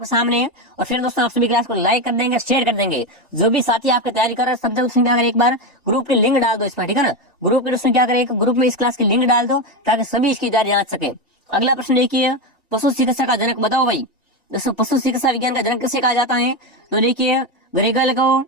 सामने है, और फिर दोस्तों आप सभी क्लास को लाइक कर देंगे, शेयर कर देंगे। जो भी साथी आपकी तैयारी कर रहे हैं सब दोस्तों क्या करें, एक बार ग्रुप की लिंक डाल दो इसमें, ठीक है ना। ग्रुप के दोस्तों क्या करें, ग्रुप में इस क्लास की लिंक डाल दो ताकि सभी इसकी तैयारी जांच सके। अगला प्रश्न देखिए, पशु चिकित्सा का जनक? बताओ भाई। दोस्तों पशु चिकित्सा विज्ञान का जनक किसे कहा जाता है? तो देखिए ग्रेगल को,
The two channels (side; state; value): both; normal; correlation 0.13